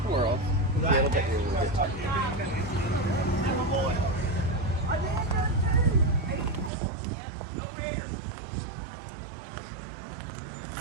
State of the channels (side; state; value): left; drops out; at 6.7 s